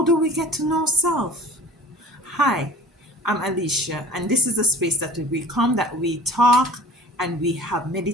do we get to know self? Hi, I'm Alicia, and this is a space that we come, that we talk, and we have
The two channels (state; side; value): normal; both; correlation 0.43